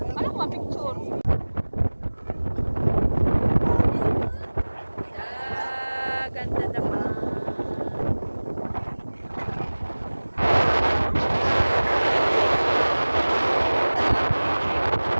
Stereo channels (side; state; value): both; inverted; correlation -1.00